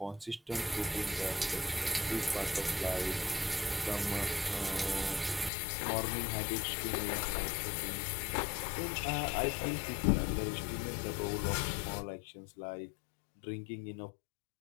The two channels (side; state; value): right; drops out; at 5.5 s